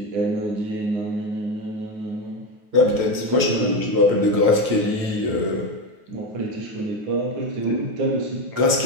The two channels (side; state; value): left; late; 9.4 ms